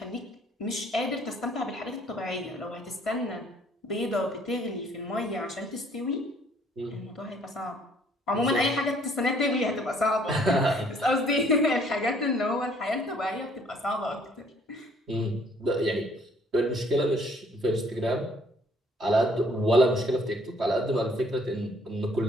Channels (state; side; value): normal; both; correlation 0.61